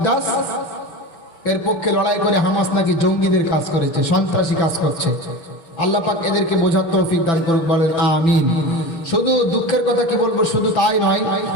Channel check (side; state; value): right; late; 6.0 ms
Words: এর পক্ষে লড়াই করে হামাস নাকি জঙ্গিদের কাজ করেছে, সন্ত্রাসী কাজ করছে। আল্লাহ পাক এদেরকে বোঝার তৌফিক দান করুক, বলেন আমিন। শুধু দুঃখের কথা কি বলবো, শুধু তাই নয়,